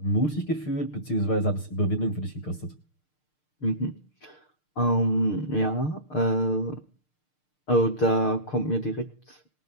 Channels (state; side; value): late; right; 6.6 ms